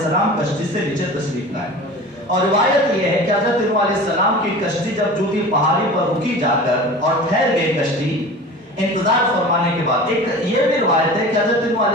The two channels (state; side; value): normal; both; correlation 0.37